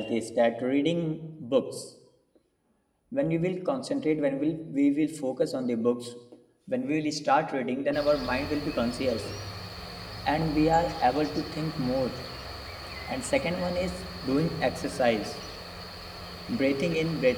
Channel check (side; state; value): both; identical; correlation 1.00